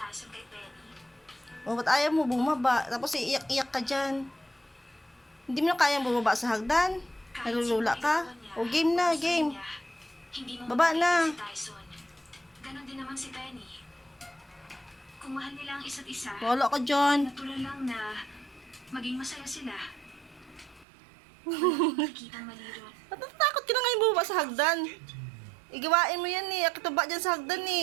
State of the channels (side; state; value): left; drops out; at 20.9 s